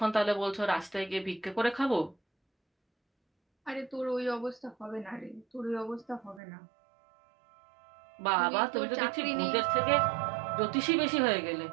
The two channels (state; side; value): drops out; left; at 6.4 s